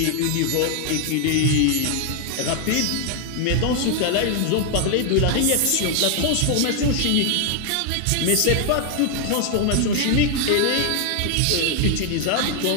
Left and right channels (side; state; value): both; different; correlation 0.00